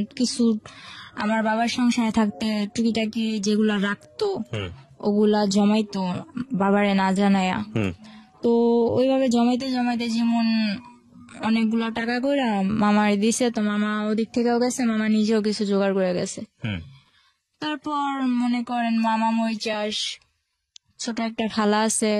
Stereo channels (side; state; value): both; identical; correlation 1.00